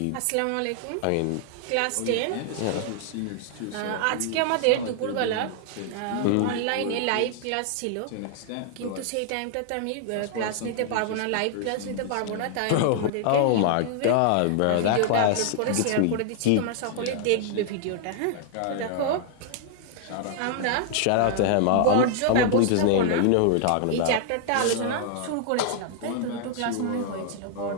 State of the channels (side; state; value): both; different; correlation -0.01